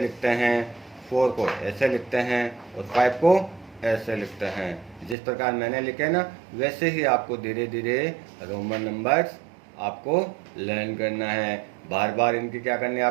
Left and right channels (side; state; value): left; drops out; at 5.2 s